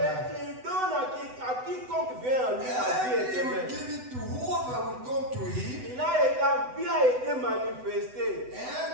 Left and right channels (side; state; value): left; late; 8.0 ms